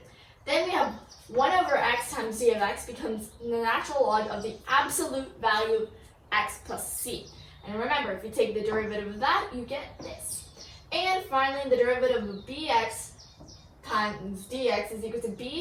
Then we have 1 over x times d of x becomes the natural log of the absolute value of x plus c. And remember, if you take the derivative of that, you get this. And finally, the derivative of bx times dx is equal to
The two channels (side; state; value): both; identical; correlation 1.00